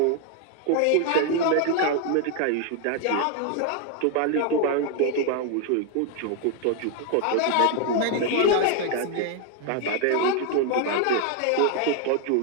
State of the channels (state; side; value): different; both; correlation 0.01